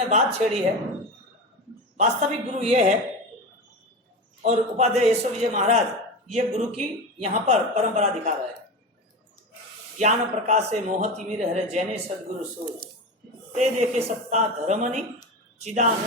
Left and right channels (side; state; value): both; normal; correlation 0.24